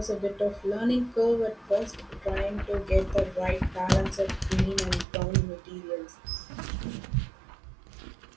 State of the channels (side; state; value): left; drops out; at 5.1 s